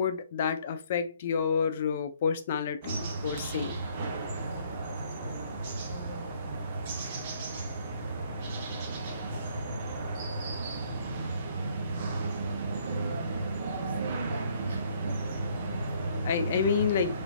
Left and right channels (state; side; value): inverted; both; correlation -0.64